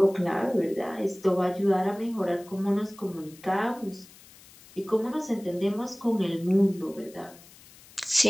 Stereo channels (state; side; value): noise; left; hiss, 23 dB below the sound